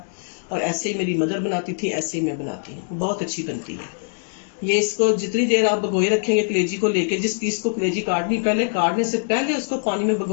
और ऐसे ही मेरी मदर बनाती थी, ऐसे ही मैं बनाती हूँ। बहुत अच्छी बनती है ये। इसको जितनी देर आप भगोए रखेंगे कलेजी को लेके, जिस पीस को कलेजी काटने से पहले उसको पानी में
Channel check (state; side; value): silent; right; digital silence